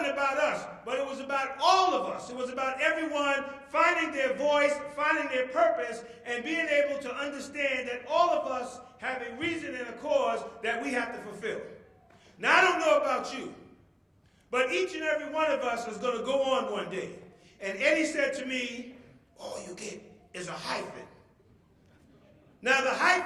about us, but it was about all of us. It was about everyone finding their voice, finding their purpose, and being able to understand that all of us have a reason and a cause that we have to fulfill. Now, I don't know about you, but each and every one of us is going to go on one day. And Eddie said to me, all you get is a hyphen. Now, the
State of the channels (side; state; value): both; identical; correlation 1.00